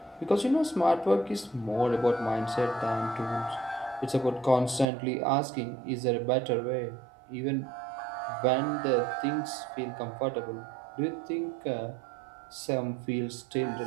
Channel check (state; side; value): drops out; left; at 4.9 s